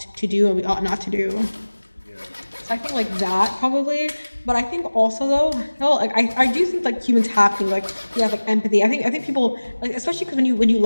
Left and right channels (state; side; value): inverted; both; correlation -1.00